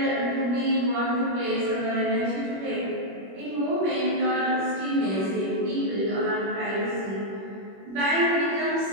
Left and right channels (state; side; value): late; left; 21 ms